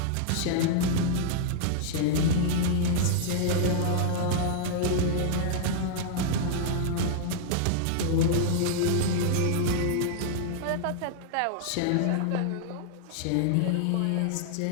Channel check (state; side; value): different; both; correlation -0.01